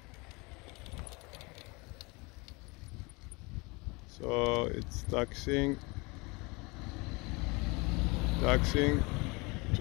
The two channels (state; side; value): quieter; right; 26.8 dB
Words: So it's taxiing